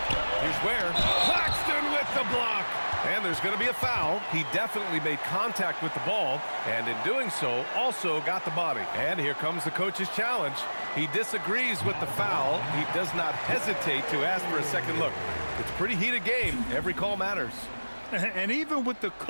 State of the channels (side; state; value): both; inverted; correlation -1.00